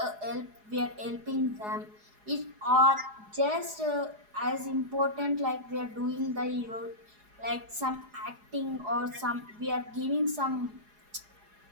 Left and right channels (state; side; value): late; left; 4.8 ms